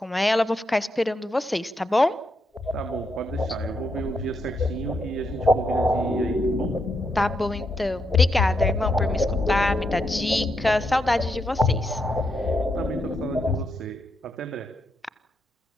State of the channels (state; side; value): normal; both; correlation 0.81